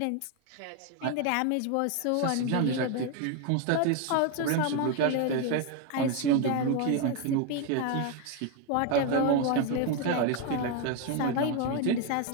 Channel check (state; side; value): different; both; correlation 0.01